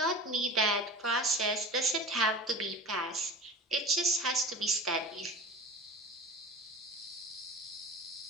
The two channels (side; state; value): both; normal; correlation 0.35